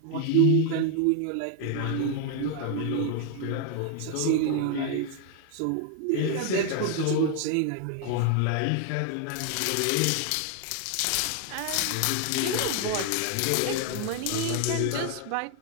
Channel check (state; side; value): different; both; correlation 0.00